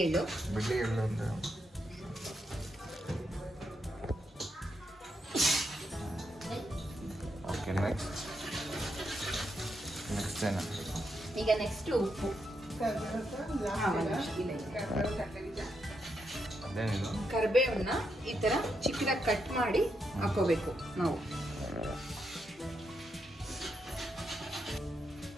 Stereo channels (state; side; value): normal; both; correlation 0.82